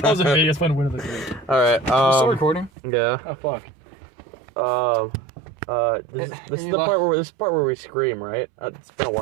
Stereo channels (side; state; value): left; drops out; at 2.7 s